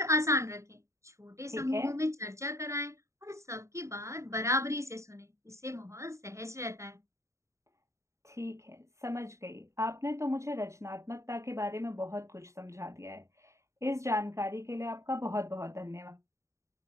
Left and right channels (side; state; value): left; late; 0.14 ms